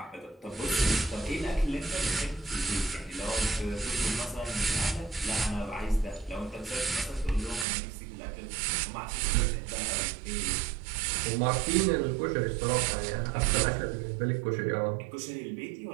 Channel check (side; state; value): left; drops out; at 7.7 s